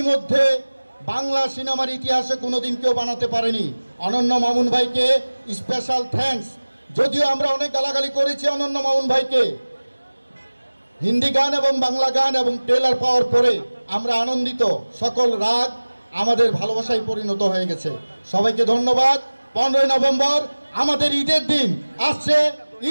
বাংলা সিনেমার ইতিহাসে কোনোদিন কেউ বানাতে পারেনি। অনন্য মামুন ভাইকে স্পেশাল থ্যাঙ্কস। যদিও আমরা অনেক গালাগালি করেছি অনন্য মামুন ভাইকে, হিন্দি গান এবং বাংলা গান এবং ট্রেলার পাওয়ার পরে আমরা আনন্দিত। সকল রাগ আমাদের ভালোবাসায় পরিণত হয়ে গেছে। সবাইকে ধন্যবাদ। 15 নভেম্বর আমাদের ঈদের দিন আসছে,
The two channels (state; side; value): inverted; both; correlation -1.00